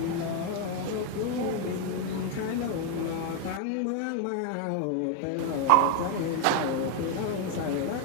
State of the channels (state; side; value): different; both; correlation 0.01